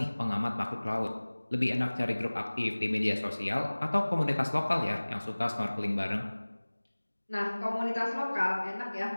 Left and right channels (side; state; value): both; inverted; correlation -1.00